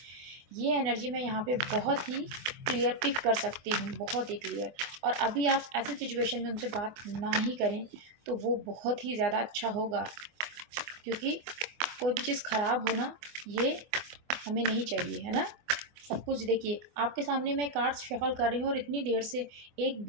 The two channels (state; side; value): late; left; 24 ms